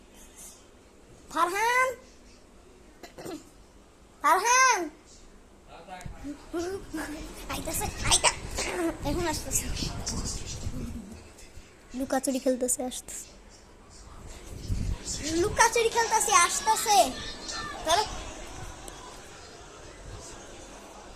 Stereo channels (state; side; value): identical; both; correlation 1.00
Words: ফারহান, ফারহান আইতাছে, এখন আসতেছে। লুকাচুরি খেলতেছে, আসতেছে। লুকাচুরি খেলতেছে, আসতেছে। ধরো,